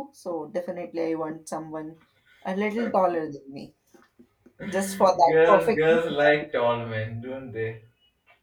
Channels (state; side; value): identical; both; correlation 1.00